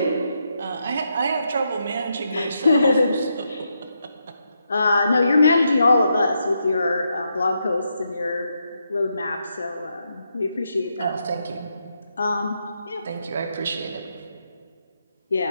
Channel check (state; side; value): inverted; both; correlation -0.81